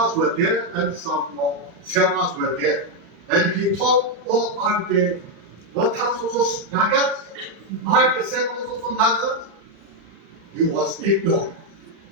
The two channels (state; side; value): late; left; 35 ms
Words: were there and some Semas were there. And he thought, oh, aren't the Lothas also Nagas? Aren't the Semas also Nagas? He was ignorant,